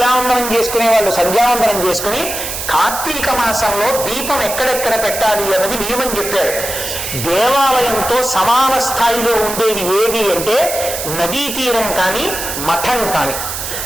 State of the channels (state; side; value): noise; right; hiss, 5 dB below the sound